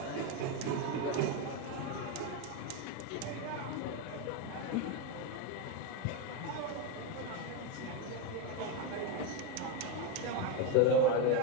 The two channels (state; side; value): different; both; correlation 0.03